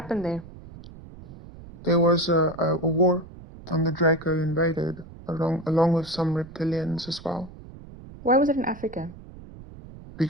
there? There was a war, and the Draco invaded along with some reptilians as well. Why was it in Africa?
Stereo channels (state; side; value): noise; right; rumble, 17 dB below the sound